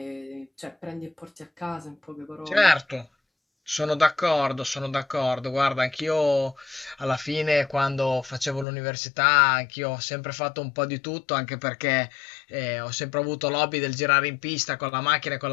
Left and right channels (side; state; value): right; drops out; at 8.7 s